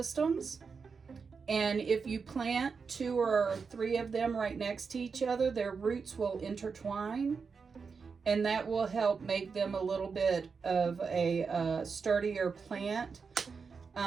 And if you plant 2 or 3 of them right next to each other, their roots will intertwine. And that will help make them a little bit of a sturdier plant.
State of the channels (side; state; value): left; quieter; 5.3 dB